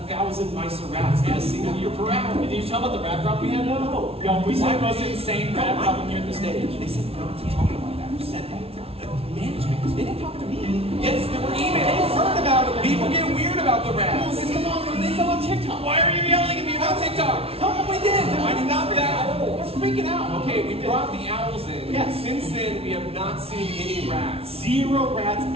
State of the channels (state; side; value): late; left; 0.28 ms